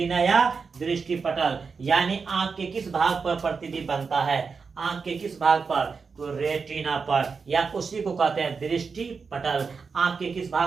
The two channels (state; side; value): quieter; left; 5.2 dB